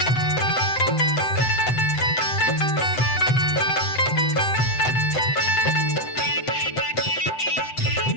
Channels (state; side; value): late; right; 7.9 ms